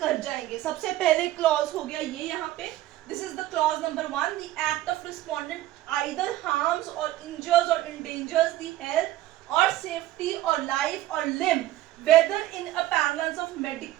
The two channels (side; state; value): left; quieter; 14.9 dB